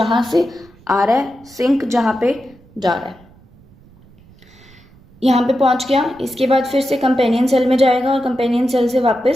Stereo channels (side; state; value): right; noise; rumble, 27 dB below the sound